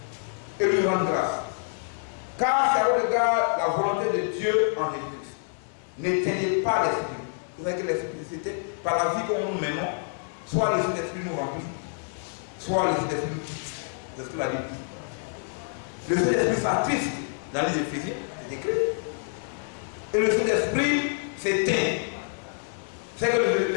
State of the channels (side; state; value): right; silent; 60 dB below the other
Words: et lui rendre grâce. Car c'est au regard la volonté de Dieu en Jésus-Christ. N'éteignez pas l'esprit. Vous savez que l'esprit, c'était par la vie que nous menons, soit l'esprit d'esprit nous remplit, soit l'esprit d'esprit nous quitte. C'est ce que la Bible dit. Le Saint-Esprit s'attriste dans les Éphésiens, c'est écrit. Et le Saint-Esprit s'éteint. C'est que